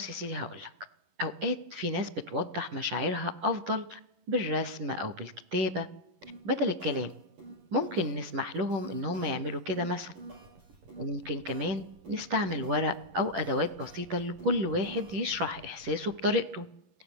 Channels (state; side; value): late; left; 11 ms